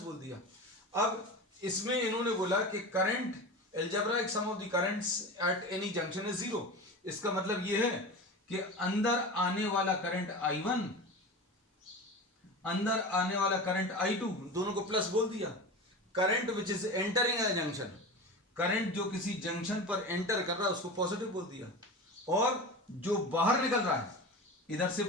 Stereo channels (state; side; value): normal; both; correlation 0.29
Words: बोल दिया। अब इसमें इन्होंने बोला कि current, algebraic sum of the currents at any junction is zero. इसका मतलब यह है कि अंदर आने वाला करंट I1, अंदर आने वाला करंट I2, दोनों को प्लस बोल दिया। Current which is entering a junction, current जो किसी जंक्शन पर एंटर कर रहा है उसको पॉजिटिव बोल दिया, और जो बाहर निकल रहा है, इधर से